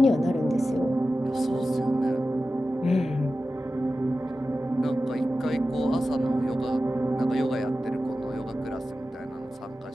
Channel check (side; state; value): both; normal; correlation 0.93